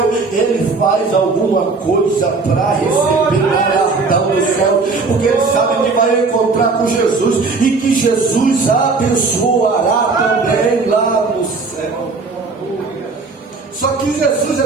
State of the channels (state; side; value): quieter; left; 4.1 dB